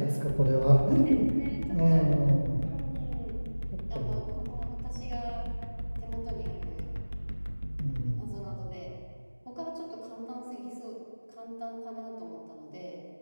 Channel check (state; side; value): inverted; both; correlation -1.00